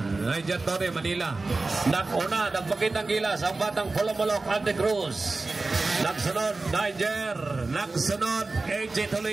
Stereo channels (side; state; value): left; quieter; 3.5 dB